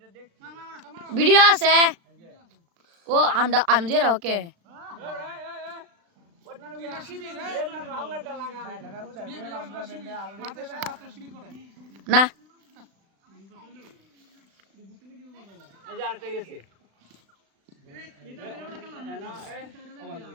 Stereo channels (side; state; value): left; late; 36 ms